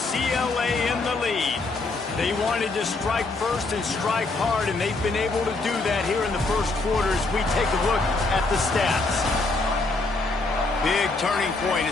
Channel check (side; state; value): right; quieter; 3.4 dB